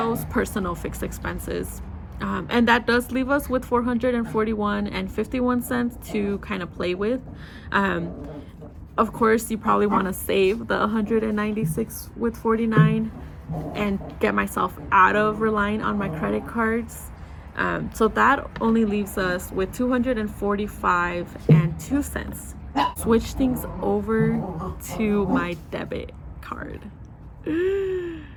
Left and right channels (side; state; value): both; identical; correlation 1.00